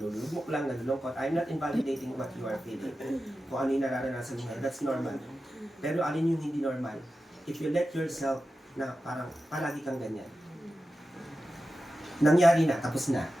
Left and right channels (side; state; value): both; normal; correlation 0.92